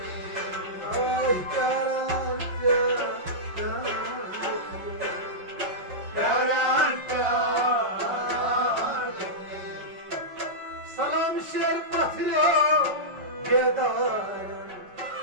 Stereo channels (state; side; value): late; left; 5.3 ms